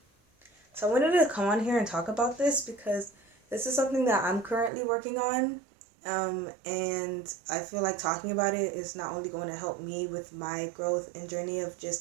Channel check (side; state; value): left; drops out; at 4.7 s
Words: So I wanted to come on here and talk about this because this is something that I'm currently working on. And I feel like talking about it is not only going to help me with my growth and journey of